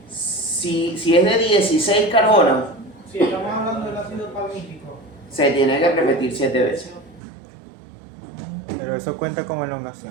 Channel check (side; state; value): left; drops out; at 7.2 s